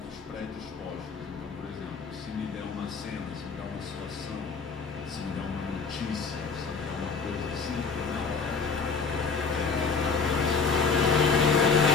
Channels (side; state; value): right; quieter; 5.1 dB